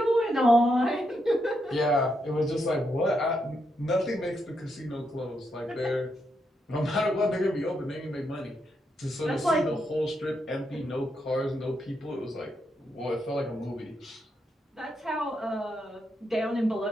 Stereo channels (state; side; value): normal; both; correlation 0.81